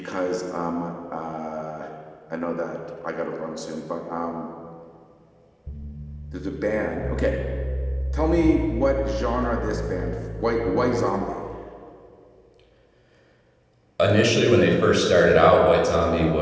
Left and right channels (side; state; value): both; identical; correlation 1.00